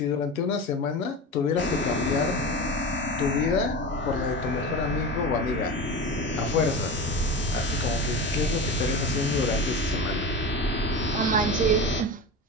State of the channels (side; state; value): both; normal; correlation 0.27